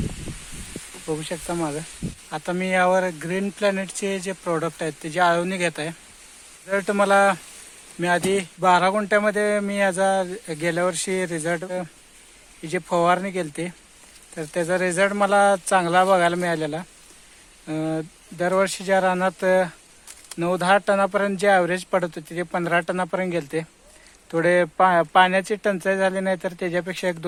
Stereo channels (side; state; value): both; identical; correlation 1.00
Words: बघू शकता मागं. आता मी यावर ग्रीन प्लॅनेटचे जे प्रोडक्ट आहेत त्याची आळवणी घेत आहे. रिझल्ट मला, मी आधी 12 गुंठ्यामध्ये मी याचा गेल्या वर्षी रिझल्ट ही जी फवारणी केली होती तर त्याचा रिझल्ट मला चांगला बघायला मिळालेला. दरवर्षीच्या रानात 9-10 टनापर्यंत जे ॲव्हरेज पडत होते ते 15 टनापर्यंत गेले. थोडे पाण्याची टंचाई झाली नाही तर त्याच्यापेक्षा